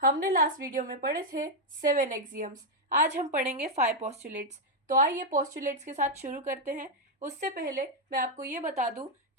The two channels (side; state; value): both; normal; correlation 0.00